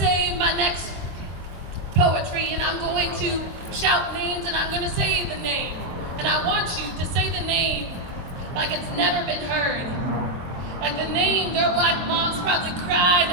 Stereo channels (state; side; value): late; left; 23 ms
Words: my next poetry, and I'm going to shout names, and I'm going to say the name. And I want you to say the name like it's never been heard. Like the name their Black moms probably